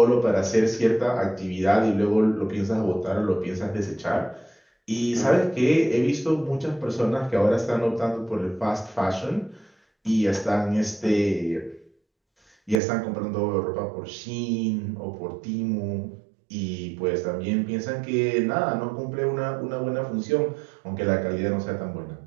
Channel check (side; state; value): left; drops out; at 12.8 s